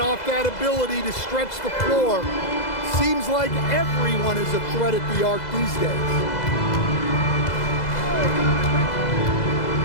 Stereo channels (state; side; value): late; right; 2.0 ms